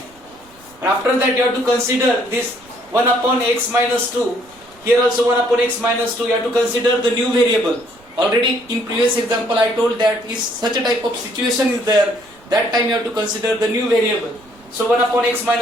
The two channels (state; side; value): noise; right; rumble, 28 dB below the sound